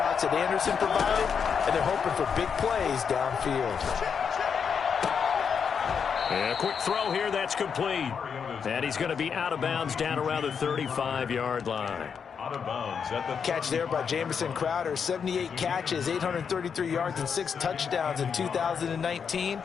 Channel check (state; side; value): quieter; right; 6.6 dB